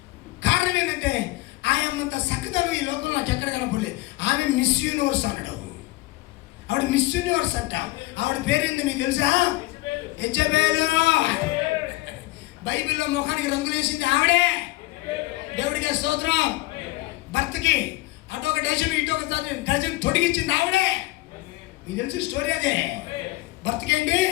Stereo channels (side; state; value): right; quieter; 20.1 dB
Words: కారణం ఏంటంటే ఆయనంత సకదలు ఈ లోకంలో నాకు ఎక్కడ కనపడలేదు. ఆమె మిస్ యూనివర్స్ అనడం. ఆవిడ మిస్ యూనివర్స్ అంట. ఆవిడ పేరేంది మీకు తెలుసా? యెజబెలు. బైబిల్లో ముఖానికి రంగులేసింది ఆవిడే. దేవుడికి స్తోత్రం. భర్తకి అటొక డజన్ ఇటొక డజన్ తొడిగించింది ఆవిడే. మీకు తెలిసిన స్టోరీ అదే. భర్తకేంటి